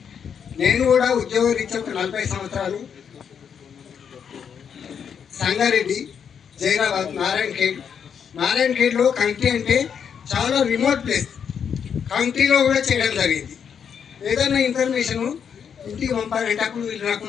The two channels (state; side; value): quieter; right; 7.5 dB